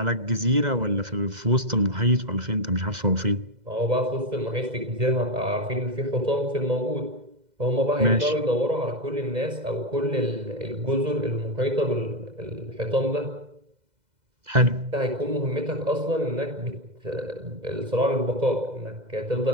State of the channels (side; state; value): left; late; 2.0 ms